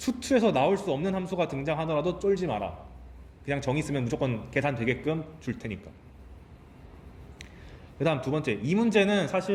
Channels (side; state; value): both; identical; correlation 1.00